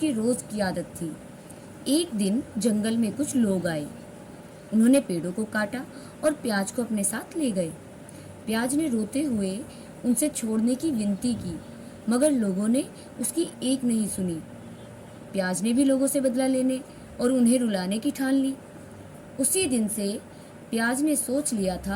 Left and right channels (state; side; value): identical; both; correlation 1.00